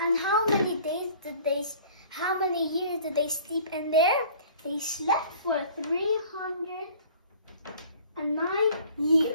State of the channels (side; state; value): both; inverted; correlation -0.50